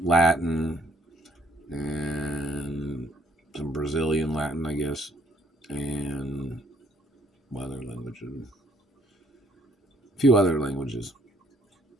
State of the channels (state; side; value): normal; both; correlation 0.66